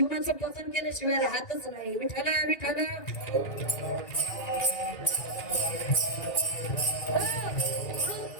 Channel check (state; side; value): late; right; 2.3 ms